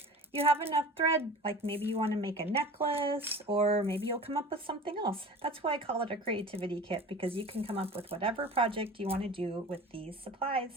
You have enough thread, like maybe you want to make a necklace, or maybe you'll come up with something else. That's why I call it a creativity kit, because you can come up with whatever project you want to do with these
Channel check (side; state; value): both; normal; correlation 0.38